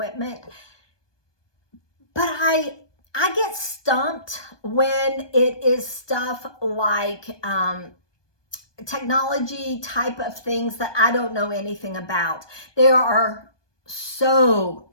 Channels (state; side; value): late; right; 1.2 ms